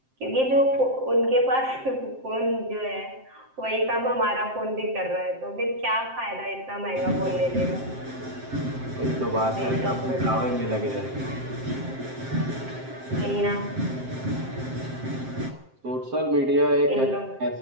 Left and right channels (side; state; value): left; late; 7.6 ms